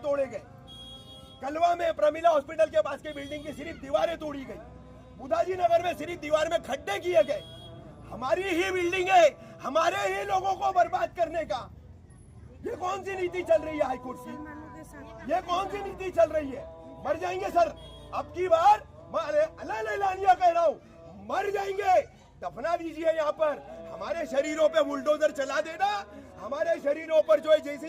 गए। कलवा में प्रमिला हॉस्पिटल के पास की बिल्डिंग की सिर्फ दीवारें तोड़ी गई। बुधाजी नगर में सिर्फ दीवार में खड्डे किए गए। हमारी ही बिल्डिंग है, हमारे ही लोगों को बर्बाद करने का ये कौन सी नीति चल रही है हाईकोर्ट की? ये कौन सी नीति चल रही है? मर जाएंगे सर, अब की बार मैं अलल एलानिया कह रहा हूं, मर जाएंगे। दफना दीजिए यहाँ पर, हमारे शरीरों पे बुलडोजर चला देना, हमारे शरीरों पर जो है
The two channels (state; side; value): identical; both; correlation 1.00